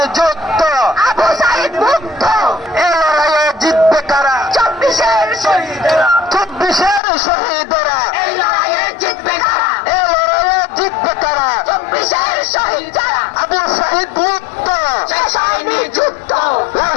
যুদ্ধ, আবু সাইদ মুক্ত। এ লড়াইয়ে জিতবে কারা? 24-এর শহীদরা, 24-এর শহীদরা, এই লড়াইয়ে জিতবে কারা? এ লড়াইয়ে জিতবে কারা? 24-এর শহীদ যারা, আবু সাইদ মুক্ত, শেষ হয়নি যুদ্ধ। লাল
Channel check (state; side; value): drops out; right; at 7.0 s